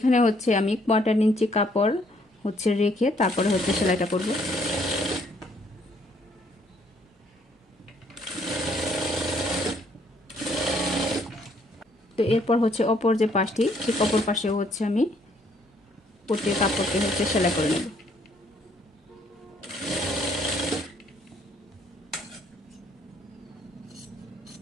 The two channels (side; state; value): both; normal; correlation 0.66